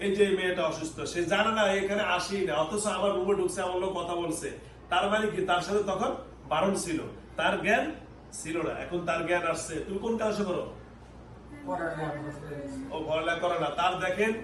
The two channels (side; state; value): both; identical; correlation 1.00